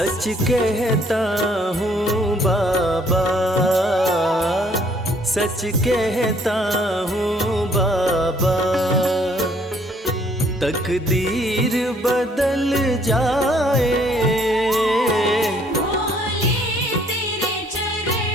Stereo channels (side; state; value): both; normal; correlation 0.63